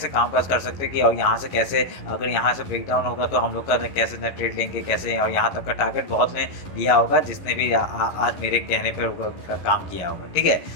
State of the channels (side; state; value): right; late; 11 ms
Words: काम काज कर सकते कि, और यहाँ से कैसे, अगर यहाँ से ब्रेक डाउन होगा तो हम लोग का कैसे ना ट्रेड लेंगे कैसे, और यहाँ तक का टारगेट बहुत ने लिया होगा जिसने भी आज मेरे कहने पर काम किया होगा, ठीक है।